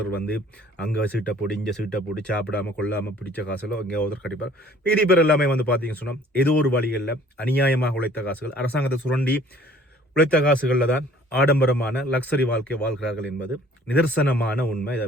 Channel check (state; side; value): normal; both; correlation 0.54